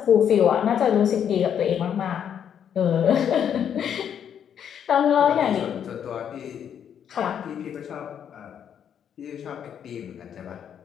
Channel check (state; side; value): quieter; right; 8.7 dB